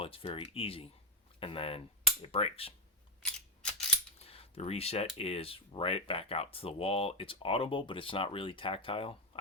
it's very easy, and then it breaks. The reset is right back out to the wall. It's audible, but it's not really tactile.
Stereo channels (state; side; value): normal; both; correlation 0.04